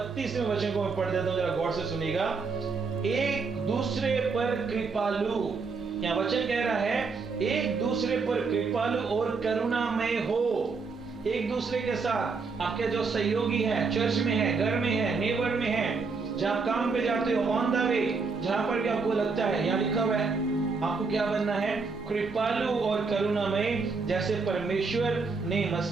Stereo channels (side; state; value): left; quieter; 4.6 dB